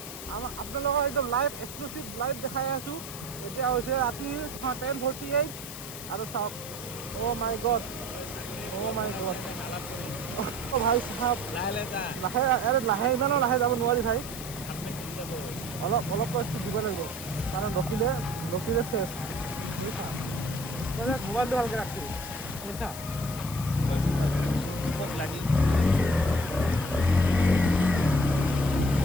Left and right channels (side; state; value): left; noise; hiss, 11 dB below the sound